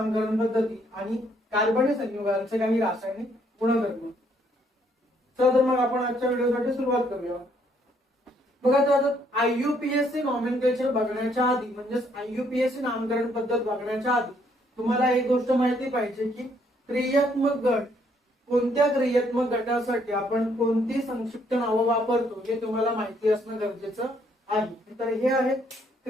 पद्धती आणि कार्बनी संयुगांचे काही रासायनिक गुणधर्म. तर मग आपण आजच्या व्हिडिओसाठी सुरुवात करूया. बघा, तर आता IUPAC नॉमेनक्लेचर बघण्याच्या आधी म्हणजेच IUPAC नामकरण पद्धत बघण्याच्या आधी तुम्हाला एक गोष्ट माहिती पाहिजे की क्रियात्मक गट, कोणत्या क्रियात्मक गटासाठी आपण कोणती संक्षिप्त नावं वापरतो हे तुम्हाला माहिती असणं गरजेचं आहे. तर हे आहेत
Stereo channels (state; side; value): normal; both; correlation 0.69